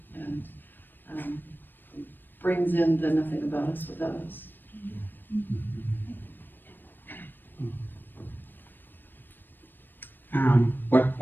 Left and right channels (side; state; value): right; late; 0.093 ms